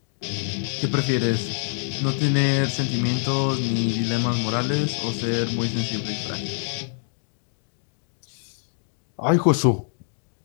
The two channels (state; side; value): silent; right; 61 dB below the other